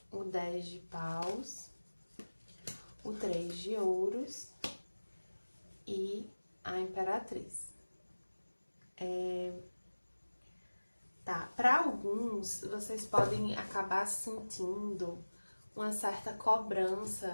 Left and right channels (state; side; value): inverted; both; correlation -1.00